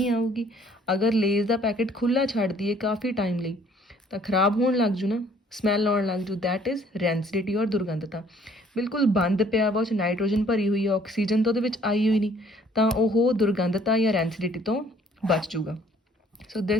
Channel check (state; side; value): normal; both; correlation 0.59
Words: ਆਊਗੀ। ਅਗਰ ਲੇਜ਼ ਦਾ ਪੈਕਟ ਖੁੱਲ੍ਹਾ ਛੱਡ ਦਈਏ ਕਾਫੀ ਟਾਈਮ ਲਈ ਤਾਂ ਖਰਾਬ ਹੋਣ ਲੱਗ ਜੂ ਨਾ, ਸਮੈਲ ਆਉਣ ਲੱਗ ਜੂ, ਦੈਟ ਇਜ਼ ਰੈਂਸਿਡਿਟੀ ਔਰ ਦੁਰਗੰਧਤਾ। ਬਿਲਕੁਲ ਬੰਦ ਪਿਆ ਵਾ, ਉਹ 'ਚ ਨਾਈਟ੍ਰੋਜਨ ਭਰੀ ਹੋਈ ਹੈ, ਆਕਸੀਜਨ ਤਾਂ ਉਹਦੇ ਵਿੱਚ ਆਈ ਹੋਈ ਨਹੀਂ, ਤਾਂ ਉਹ ਦੁਰਗੰਧਤਾ ਜਾਂ ਰੈਂਸਿਡਿਟੀ ਤੋਂ ਬਚ ਜੂਗਾ। So